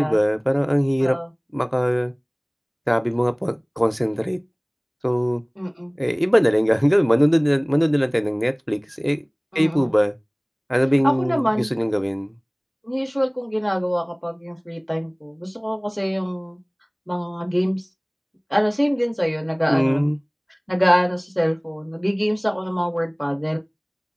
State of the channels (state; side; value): identical; both; correlation 1.00